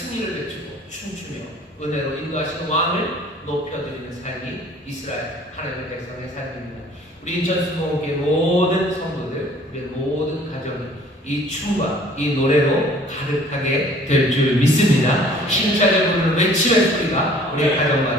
외치고 춤추며 은혜로 인도하시는 왕을 높여드리는 삶이 이스라엘 하나님의 백성의 삶입니다. 우리 인천수목교회 모든 성도들, 우리의 모든 가정이 이 춤과 이 노래로 가득하게 될 줄 믿습니다. 힘차게 부르는 외침의 소리가 우리의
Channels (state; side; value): normal; both; correlation 0.53